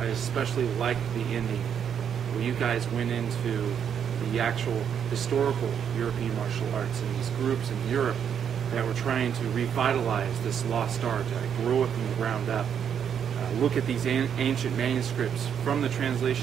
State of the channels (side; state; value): left; quieter; 8.2 dB